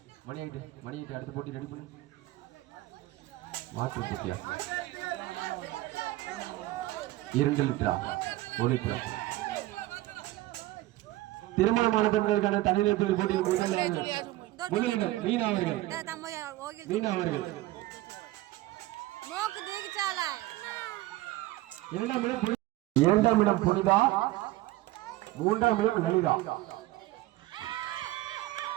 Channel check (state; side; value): quieter; left; 17.4 dB